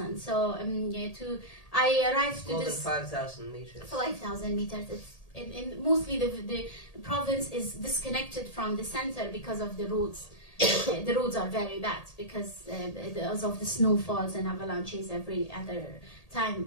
So I arrived to more this than 5,000 meters. 5,000 meters. And mostly the province is disconnected from the center because of the roads. The roads are very bad because of the snowfalls and avalanches every other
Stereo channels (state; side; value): late; right; 1.8 ms